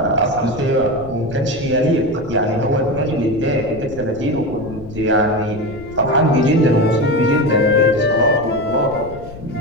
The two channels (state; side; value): noise; left; rumble, 15 dB below the sound